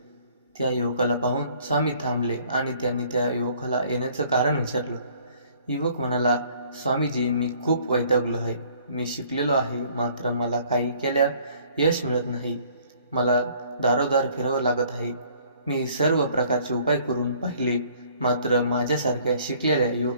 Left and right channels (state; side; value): inverted; both; correlation -0.58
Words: त्या युवकाला पाहून स्वामी थांबले आणि त्यांनी त्या युवकाला येण्याचं कारण विचारलं. युवक म्हणाला, स्वामीजी, मी खूप वैतागलो आहे. मी शिकलेलो आहे, मात्र मला काही केल्या यश मिळत नाही. मला दारोदार फिरावं लागत आहे. मी सर्व प्रकारचे उपाय करून पाहिले, मात्र माझ्यासारख्या शिकलेल्या